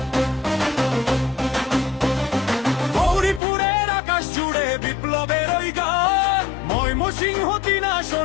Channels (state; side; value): drops out; right; at 3.4 s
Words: গৌরীপুরের আকাশ জুড়ে বিপ্লবের ওই গান, ময়মনসিংহ ৩